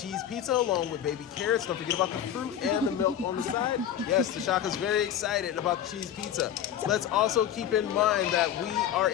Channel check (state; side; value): quieter; right; 10.1 dB